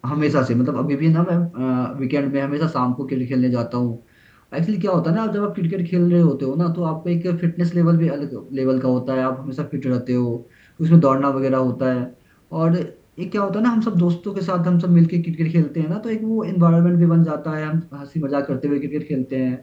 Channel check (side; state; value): both; identical; correlation 1.00